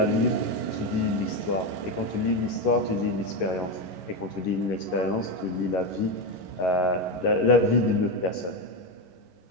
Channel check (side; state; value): right; late; 11 ms